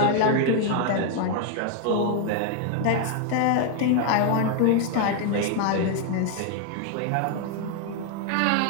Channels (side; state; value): both; different; correlation 0.00